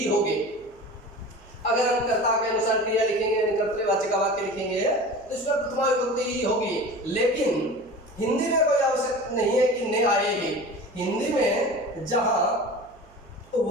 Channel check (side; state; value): right; noise; hum, 27 dB below the sound